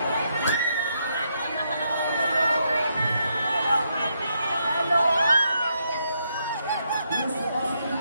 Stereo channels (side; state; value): both; inverted; correlation -0.78